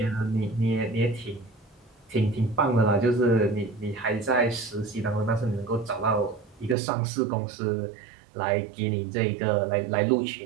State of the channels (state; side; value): drops out; left; at 6.8 s